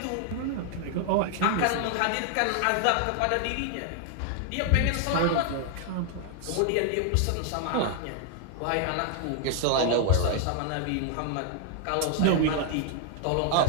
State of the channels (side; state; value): both; different; correlation 0.00